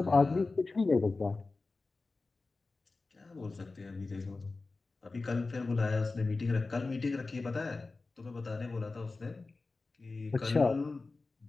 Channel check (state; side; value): quieter; right; 3.7 dB